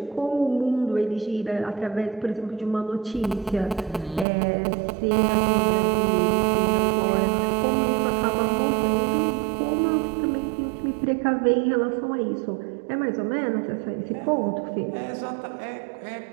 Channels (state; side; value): drops out; left; at 4.2 s